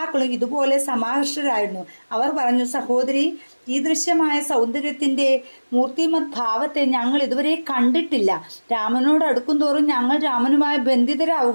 ഇതുപോലെ സമാകർഷരായിരുന്നു. അവർ പറഞ്ഞു, സഹോദരി, ഈ ദൃശ്യമായ സൗന്ദര്യത്തിന്റെ മൂർത്തിമത് ഭാവത്തെ ഞങ്ങൾ ഇതുവരെ കണ്ടിട്ടില്ല. രാമനോട് അടുക്കും തോറും ഞങ്ങൾ രാമനുമായി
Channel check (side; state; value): both; inverted; correlation -1.00